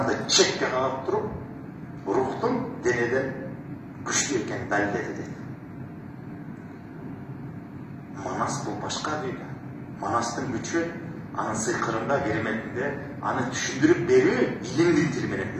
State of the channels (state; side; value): identical; both; correlation 1.00